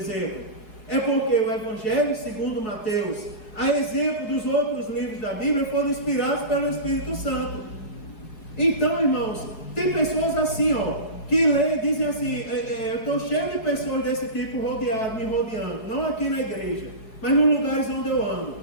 É porque o Evangelho segundo Mateus, a exemplo dos outros livros da Bíblia, foram inspirados pelo Espírito Santo. Então, irmãos, tem pessoas assim, que leem, dizem assim, eu estou cheio de pessoas desse tipo me rodeando, não aqui na igreja, mas nos lugares onde eu ando.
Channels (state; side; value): late; right; 4.7 ms